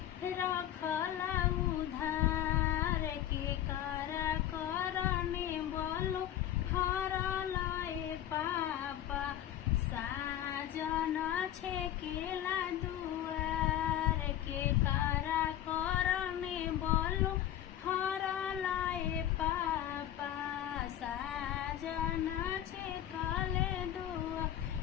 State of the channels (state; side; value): quieter; right; 11.8 dB